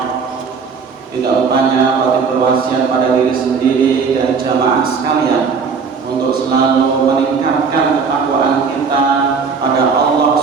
Tidak lupanya kami berwasiat pada diri sendiri dan jamaah sekalian untuk selalu meningkatkan ketakwaan kita pada Allah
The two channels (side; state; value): left; quieter; 5.5 dB